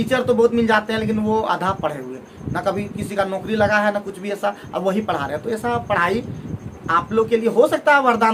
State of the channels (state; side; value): identical; both; correlation 1.00